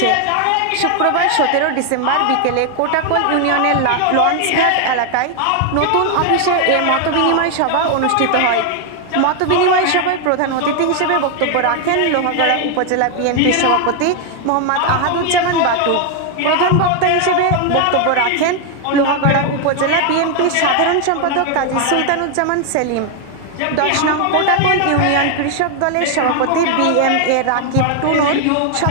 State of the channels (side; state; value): both; different; correlation 0.00